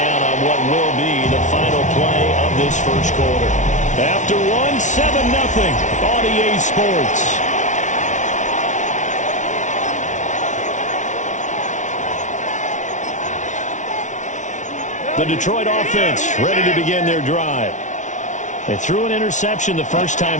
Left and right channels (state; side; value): late; right; 0.36 ms